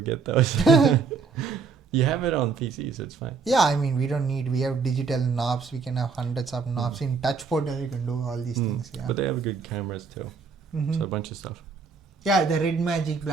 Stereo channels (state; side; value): quieter; left; 5.1 dB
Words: get those. You have it on PC, so it's fine. Yeah, I mean, we have digital knobs. We can have hundreds of knobs. In touchpad, you can do all these things. Yeah. But they have good cameras too. Mhm. So a bunch of stuff. Yeah, the red magic,